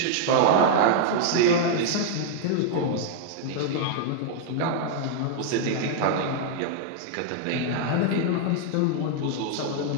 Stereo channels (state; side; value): different; both; correlation -0.01